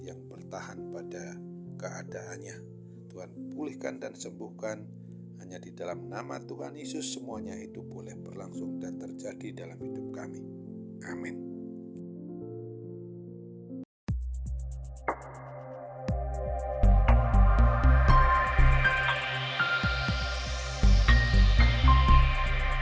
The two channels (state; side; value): identical; both; correlation 1.00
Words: yang bertahan pada keadaannya. Tuhan pulihkan dan sembuhkan, hanya di dalam nama Tuhan Yesus semuanya itu boleh berlangsung dan terjadi dalam hidup kami. Amin.